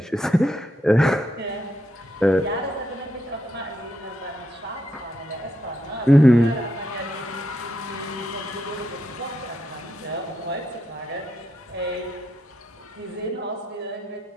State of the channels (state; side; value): normal; both; correlation 0.81